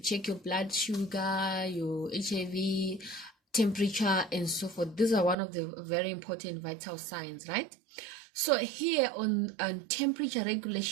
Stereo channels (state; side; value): drops out; left; at 5.4 s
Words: your blood sugar, your HIV, temperature, and so forth. These are one of the very important vital signs, right? So here on temperature